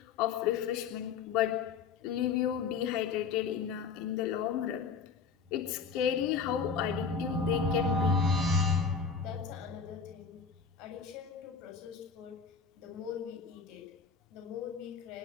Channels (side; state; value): right; quieter; 5.8 dB